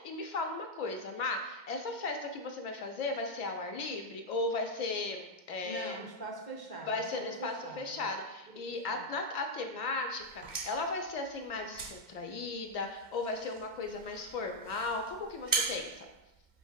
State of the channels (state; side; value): late; right; 2.1 ms